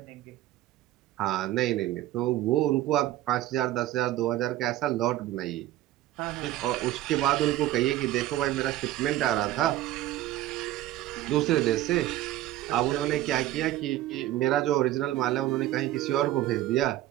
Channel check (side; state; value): left; quieter; 14.5 dB